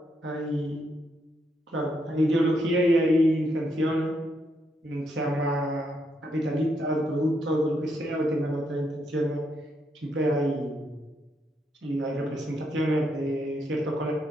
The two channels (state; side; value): normal; both; correlation 0.78